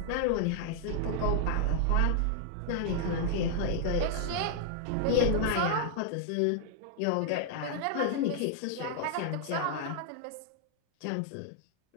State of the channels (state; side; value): different; both; correlation -0.01